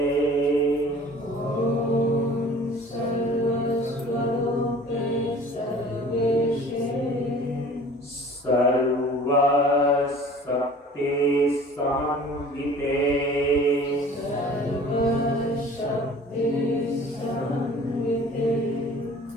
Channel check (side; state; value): both; normal; correlation 0.46